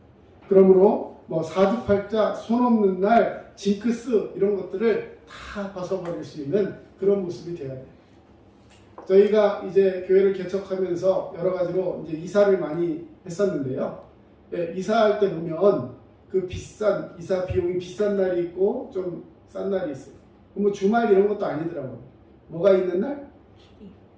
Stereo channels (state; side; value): identical; both; correlation 1.00